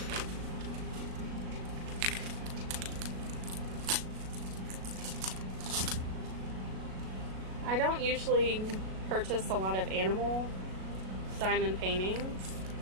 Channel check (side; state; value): left; late; 37 ms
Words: I don't usually purchase a lot of animal diamond paintings,